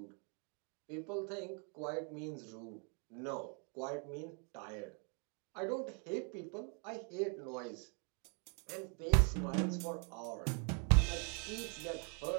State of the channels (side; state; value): left; quieter; 38.4 dB